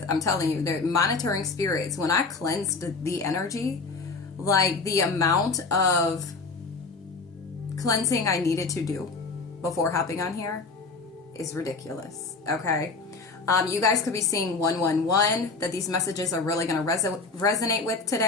I'm telling you, they're monitoring spirits. When I cleansed the energy, like the amount of cleansing I needed to do before hopping on here is ridiculous. Okay. You guys could be seeing 111, that these messages are really going to resonate with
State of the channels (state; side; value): quieter; right; 4.1 dB